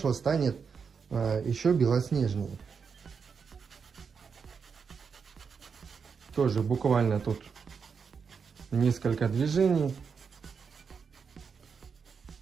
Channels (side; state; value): left; quieter; 5.9 dB